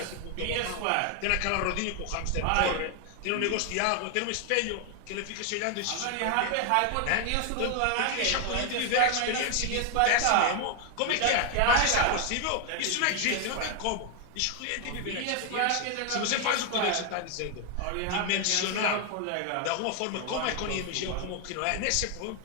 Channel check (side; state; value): both; different; correlation 0.01